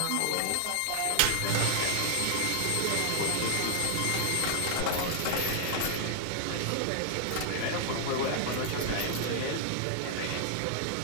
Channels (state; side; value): different; both; correlation 0.00